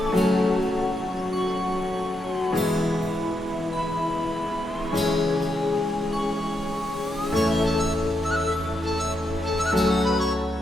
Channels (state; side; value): normal; both; correlation 0.82